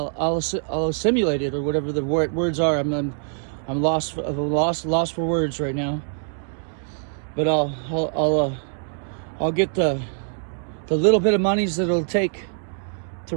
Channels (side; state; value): left; silent; digital silence